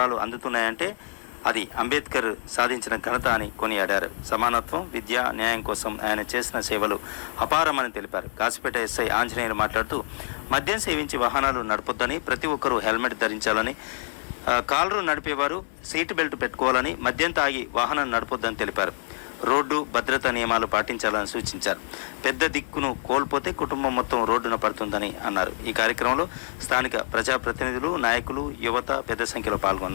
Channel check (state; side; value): silent; right; digital silence